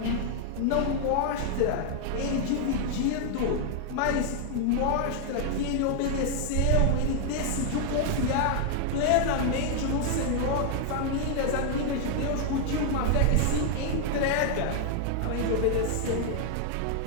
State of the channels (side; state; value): both; different; correlation 0.00